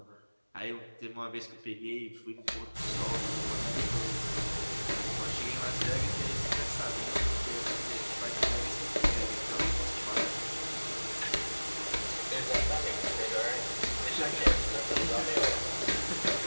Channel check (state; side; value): inverted; both; correlation -1.00